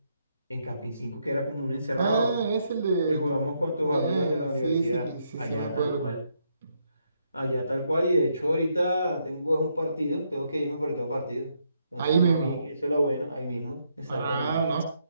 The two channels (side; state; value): both; inverted; correlation -0.77